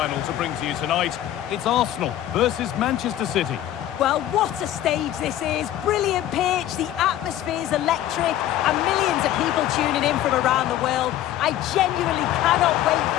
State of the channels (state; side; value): quieter; right; 12.6 dB